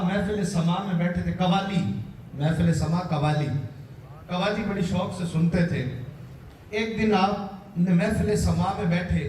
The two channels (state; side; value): identical; both; correlation 1.00